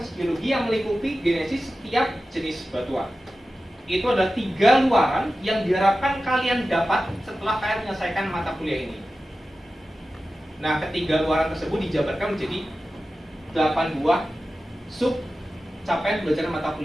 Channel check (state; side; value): normal; both; correlation 0.94